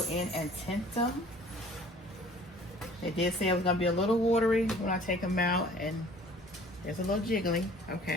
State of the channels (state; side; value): normal; both; correlation 0.51